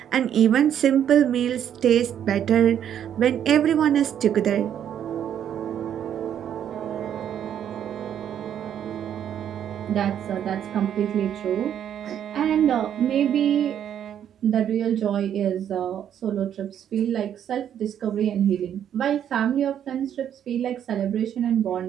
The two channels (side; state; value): left; quieter; 9.6 dB